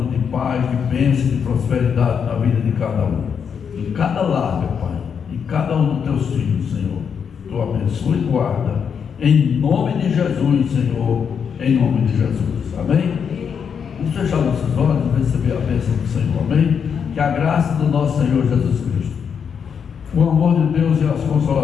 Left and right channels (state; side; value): quieter; right; 7.0 dB